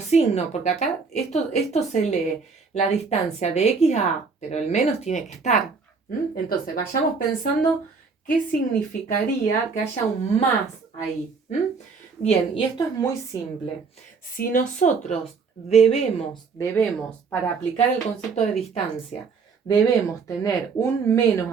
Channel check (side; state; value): left; quieter; 5.0 dB